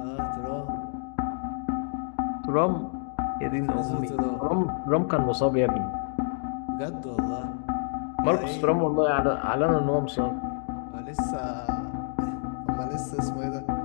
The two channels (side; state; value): right; silent; 59 dB below the other